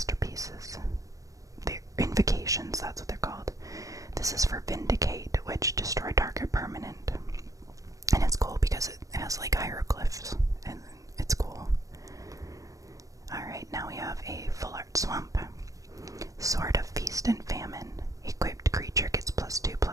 They're invocations, that's what they're called. This is for Vindicate, which destroy target permanent. And it's cool because it has, like, hieroglyphs, and it's cool. Swamp. Sword of Feast and Famine. Equipped creature gets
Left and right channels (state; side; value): late; left; 0.16 ms